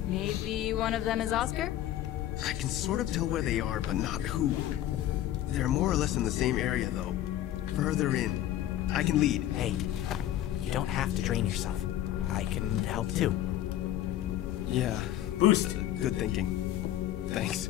Maybe one of them is Oscar? I can sort of tell where they are, but not who. They're more or less in the same area, though. Further in. I can lead. Hey, you don't have to drain yourself. I can help too. Yeah, Boost. good thinking. Thanks.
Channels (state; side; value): quieter; right; 12.7 dB